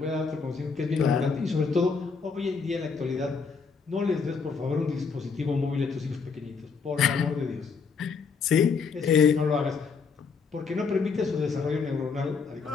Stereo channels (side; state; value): right; quieter; 5.3 dB